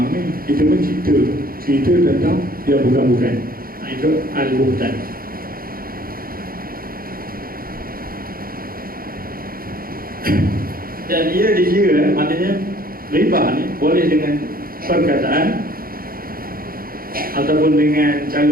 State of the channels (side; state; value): left; late; 0.42 ms